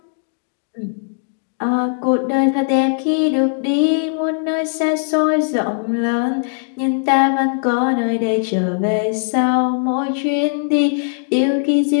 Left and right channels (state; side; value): silent; right; digital silence